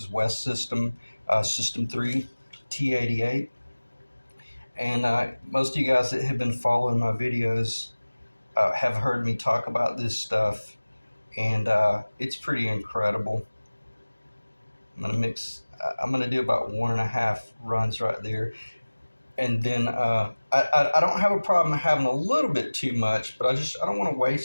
West System, System 3 T88. And most of you guys that have been following my videos have heard me talk about this stuff, and it's pretty incredible. I'm gonna do about 1.5 runs right there, and then I don't have a problem having a little bit too much, but I don't want to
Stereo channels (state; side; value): inverted; both; correlation -1.00